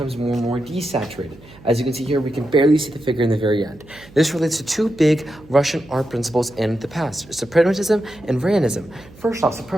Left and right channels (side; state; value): right; noise; hum, 23 dB below the sound